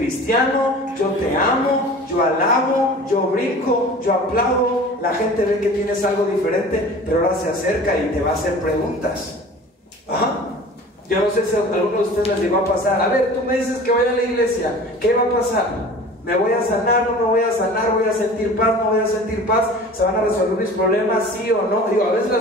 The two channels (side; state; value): both; normal; correlation 0.41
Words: yo te amo, yo alabo, yo brinco, yo aplaudo. La gente ve que tienes algo diferente, pero ahora se acerca y te va a hacer preguntas. Ajá. Yo no sé si a alguno de ustedes les llegó a pasar. A ver, tú me dices que vaya a la iglesia, ¿qué va a pasar? ¿Me voy a sanar? ¿No me voy a sanar? ¿Voy a sentir paz? ¿No voy a sentir paz? ¿Se van a resolver mis problemas? ¿Sí o no? Digo, a veces las